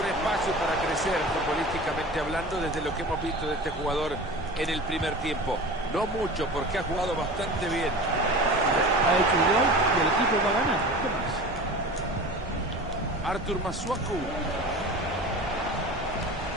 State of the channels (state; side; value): normal; both; correlation 0.36